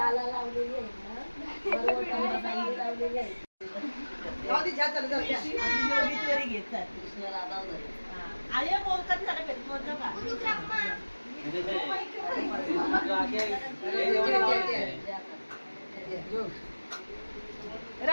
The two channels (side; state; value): both; inverted; correlation -1.00